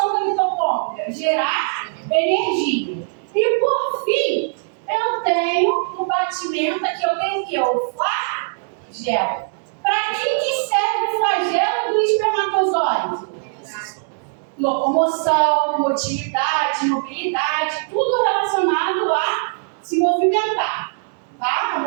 da mitocôndria? Gerar energia. E por fim, eu tenho no batimento aqui, eu tenho o quê? O flagelo. Para que serve o flagelo do espermatozoide? Locomoção, motilidade, mobilidade, tudo relacionado a se movimentar, tá? A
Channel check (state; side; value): silent; left; digital silence